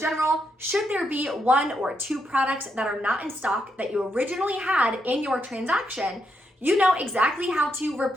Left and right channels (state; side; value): normal; both; correlation 0.80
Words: should there be 1 or 2 products that are not in stock that you originally had in your transaction, you know exactly how to